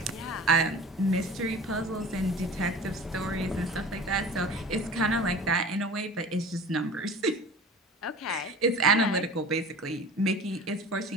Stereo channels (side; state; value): both; normal; correlation 0.39